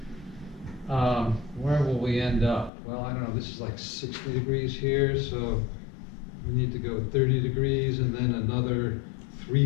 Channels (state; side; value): drops out; right; at 2.7 s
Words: where will we end up? Well, I don't know. This is like 60 degrees here, so we need to go 30 degrees and then another